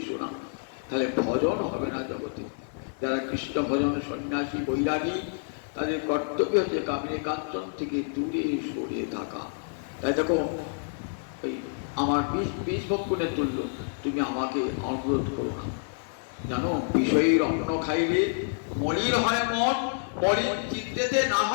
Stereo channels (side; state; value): right; silent; digital silence